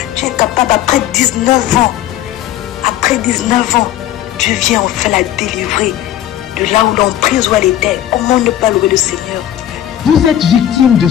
tu es capable après 19 ans. Après 19 ans, Dieu vient enfin la délivrer de là où l'emprise où elle était. Comment ne pas louer le Seigneur? Vous êtes victime de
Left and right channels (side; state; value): right; quieter; 12.0 dB